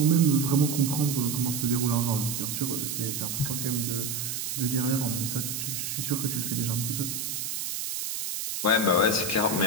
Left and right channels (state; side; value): noise; right; hiss, 4 dB below the sound